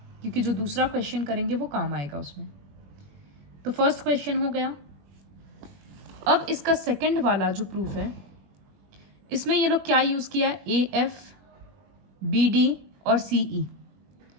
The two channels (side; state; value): left; late; 21 ms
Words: क्योंकि जो दूसरा क्वेश्चन करेंगे वो काम आएगा उसमें। तो फर्स्ट क्वेश्चन हो गया। अब इसका सेकंड वाला जो प्रूफ है, इसमें ये लोग क्या यूज़ किया है, AF, BD और CE,